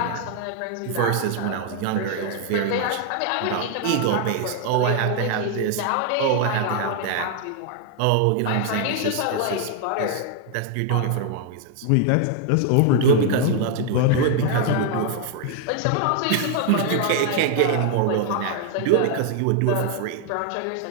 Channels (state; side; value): different; both; correlation 0.00